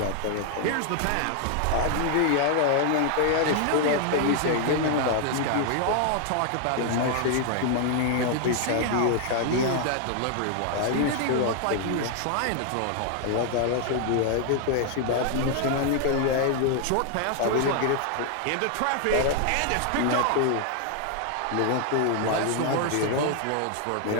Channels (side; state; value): both; different; correlation 0.00